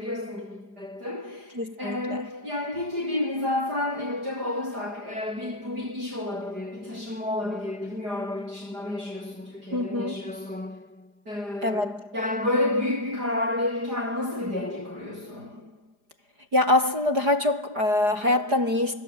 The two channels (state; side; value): late; left; 4.9 ms